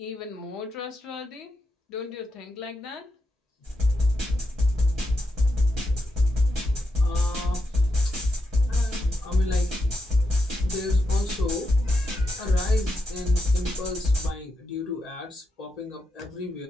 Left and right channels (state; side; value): normal; both; correlation 0.85